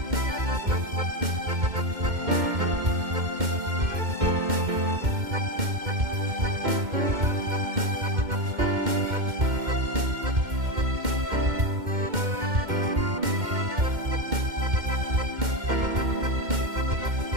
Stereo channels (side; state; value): left; late; 2.1 ms